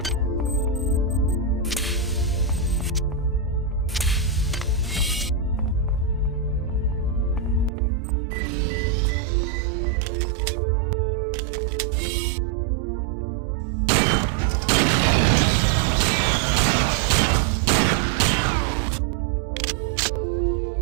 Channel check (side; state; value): left; drops out; at 7.7 s